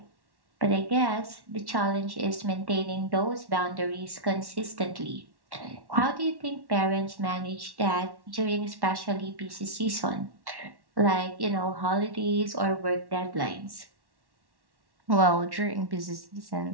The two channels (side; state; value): left; late; 1.1 ms